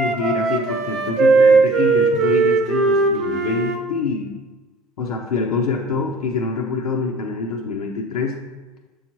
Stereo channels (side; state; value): both; normal; correlation 0.46